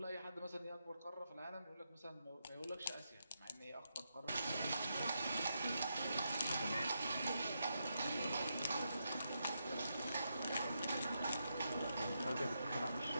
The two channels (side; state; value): both; inverted; correlation -0.83